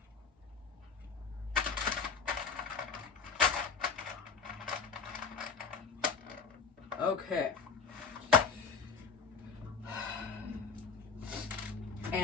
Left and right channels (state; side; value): quieter; right; 5.4 dB